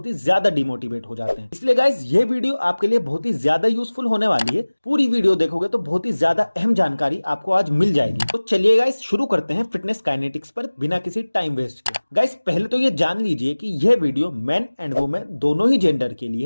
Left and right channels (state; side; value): inverted; both; correlation -1.00